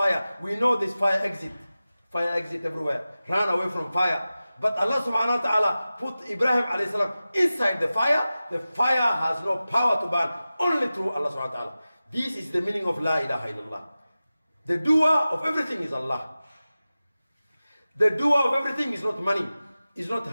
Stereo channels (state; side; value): inverted; both; correlation -0.95